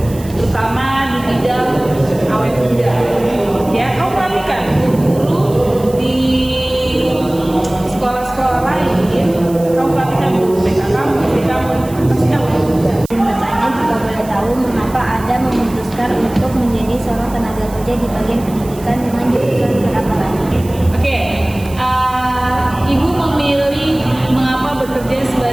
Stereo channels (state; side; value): noise; right; hiss, 19 dB below the sound